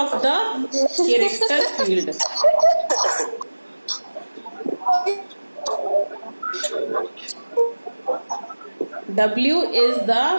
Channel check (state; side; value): inverted; both; correlation -1.00